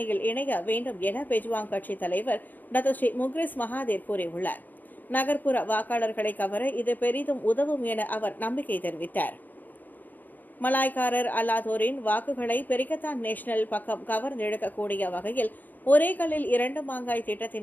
இணைய வேண்டும் என பெஜ்வாங் கட்சி தலைவர் டத்தோஸ்ரீ முக்ரிஸ் மகாதேர் கூறியுள்ளார். நகர்ப்புற வாக்காளர்களை கவர இது பெரிதும் உதவும் என அவர் நம்பிக்கை தெரிவித்தார். மலாய்க்காரர் அல்லாதோரின் வாக்குகளை பெரிகத்தான் நேஷனல் பக்கம் கவர்ந்தெடுக்கக்கூடிய வகையில் ஒரே கல்லில் 2 மாங்காய்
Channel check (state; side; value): late; right; 0.085 ms